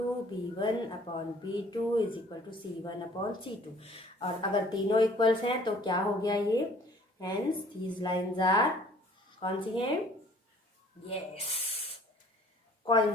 B1/B2 is equal to C1/C2। और अगर तीनों इक्वल्स हैं तो क्या हो गया ये, हेंस दीज लाइंस आर कौन सी हैं, यस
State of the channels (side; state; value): both; normal; correlation 0.55